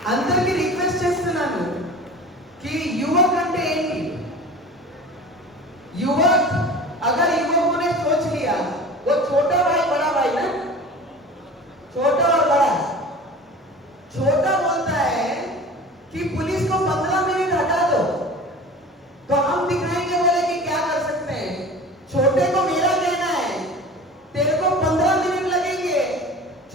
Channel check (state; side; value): normal; both; correlation 0.38